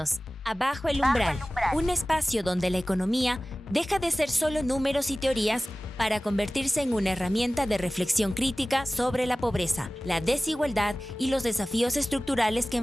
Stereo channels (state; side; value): normal; both; correlation 0.97